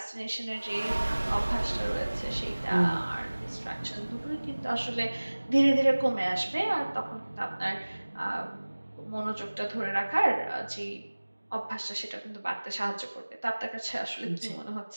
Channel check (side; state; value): both; inverted; correlation -1.00